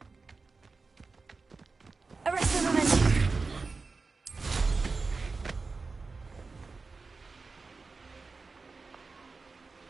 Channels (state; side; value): quieter; left; 4.2 dB